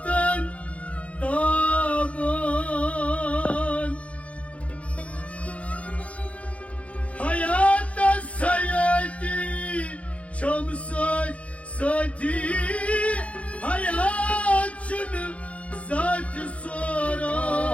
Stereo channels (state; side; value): late; right; 0.064 ms